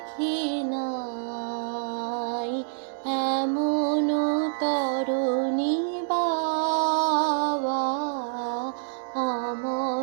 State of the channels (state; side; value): silent; left; digital silence